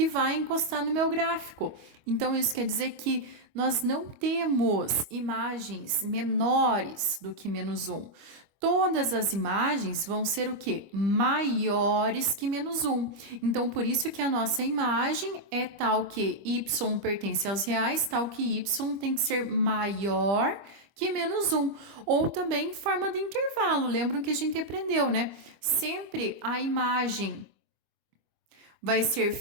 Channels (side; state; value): left; late; 25 ms